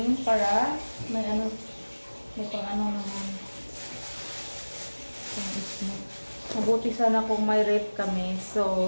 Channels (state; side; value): inverted; both; correlation -1.00